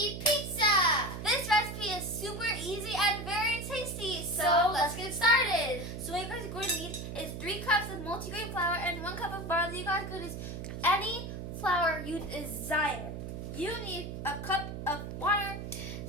pizza. This recipe is super easy and very tasty, so let's get started. So what you guys are going to need is 3 cups of multigrain flour and 1 cup of barley. You guys could use any flour you desire. You need a cup of water,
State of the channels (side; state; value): right; noise; hum, 7 dB below the sound